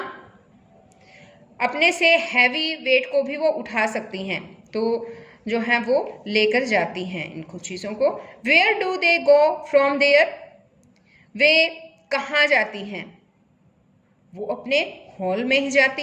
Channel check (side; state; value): both; identical; correlation 1.00